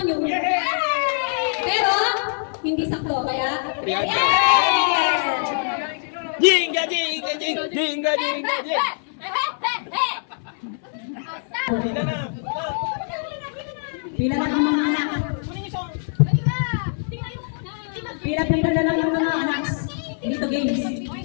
Pero, hindi sakto. Kaya, Jinga, jinga, jinga, jinga, jinga, jinga. Pila na. Pila lang ang mga anak. Pila-pila na lang yung mga anak. Dito games.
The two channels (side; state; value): right; silent; 63 dB below the other